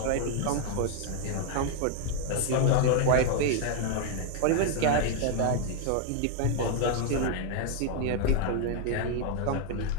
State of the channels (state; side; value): different; both; correlation 0.00